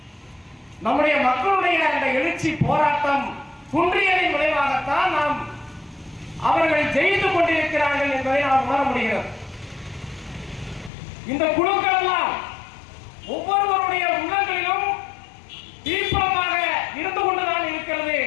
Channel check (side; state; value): right; drops out; at 10.9 s